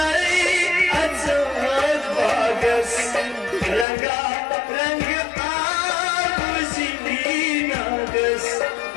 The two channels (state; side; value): drops out; right; at 3.9 s